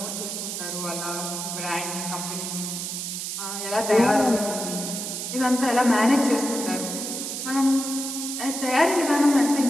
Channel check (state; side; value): noise; right; hiss, 5 dB below the sound